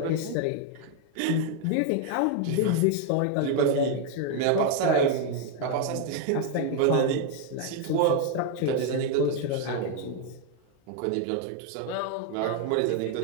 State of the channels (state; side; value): different; both; correlation 0.01